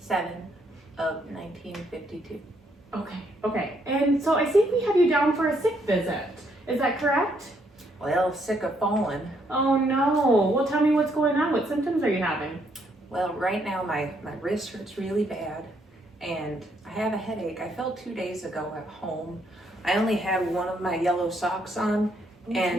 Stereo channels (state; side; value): normal; both; correlation 0.72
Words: of 1952. Okay. And so I think we have you down for a sick visit. Is that correct? Well, sick of falling. Oh no. Well, tell me what's going on. What symptoms are you having? Well, right now my wrist hurts really bad, and I have a headache. I fell 2 days ago at home. I only had one of my yellow socks on,